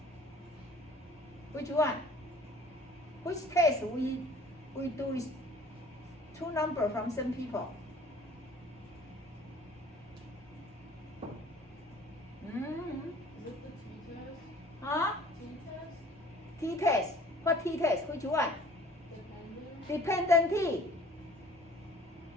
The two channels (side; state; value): both; normal; correlation 0.50